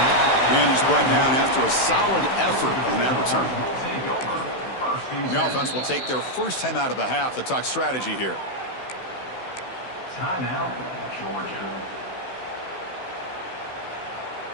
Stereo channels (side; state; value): right; late; 16 ms